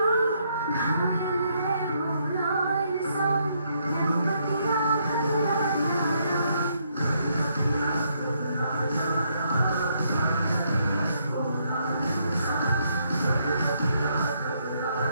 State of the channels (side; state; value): both; inverted; correlation -0.74